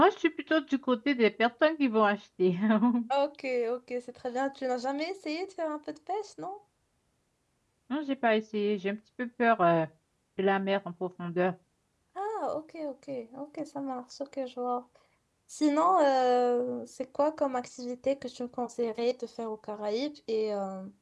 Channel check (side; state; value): both; identical; correlation 1.00